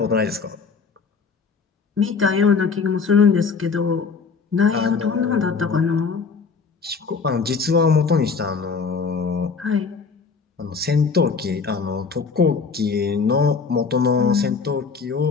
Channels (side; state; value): right; quieter; 5.1 dB